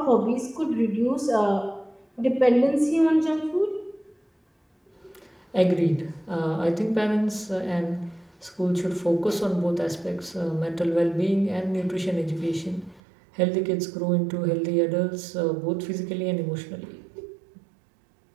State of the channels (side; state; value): left; drops out; at 13.0 s